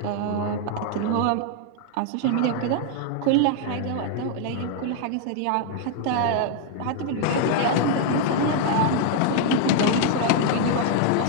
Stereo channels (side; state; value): both; different; correlation 0.00